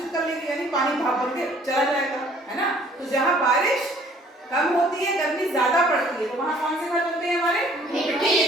कर लेगी, यानी पानी भाप बन के चला जाएगा, है ना। तो जहाँ बारिश कम होती है, गर्मी ज्यादा पड़ती है, तो वहाँ कौन से घर बनते हैं हमारे? मिट्टी के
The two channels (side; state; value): both; normal; correlation 0.57